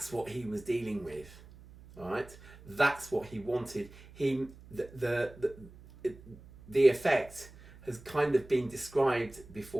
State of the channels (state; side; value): noise; right; hum, 20 dB below the sound